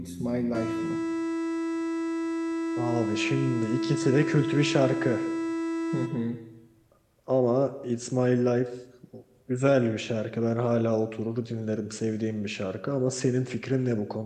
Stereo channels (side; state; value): both; identical; correlation 1.00